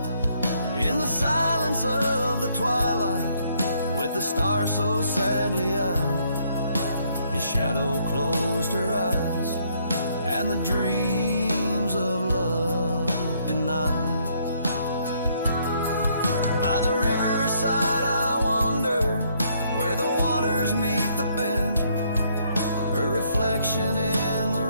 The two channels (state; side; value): inverted; both; correlation -0.69